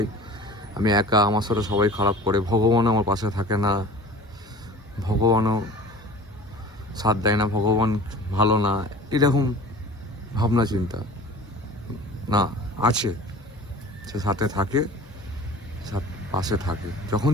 আমি একা, আমার সাথে সবাই খারাপ করে, ভগবানও আমার পাশে থাকে না, ভগবানও সাথ দেয় না, ভগবান ভালো না, এরকম ভাবনা চিন্তা না, আছে, সে সাথে থাকে, পাশে থাকে। যখন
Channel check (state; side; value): normal; both; correlation 0.42